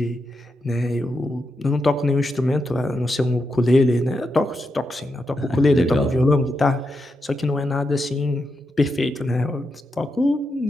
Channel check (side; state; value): both; normal; correlation 0.85